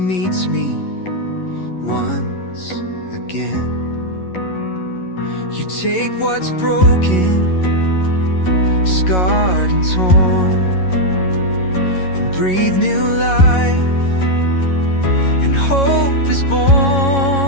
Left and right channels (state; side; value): late; right; 11 ms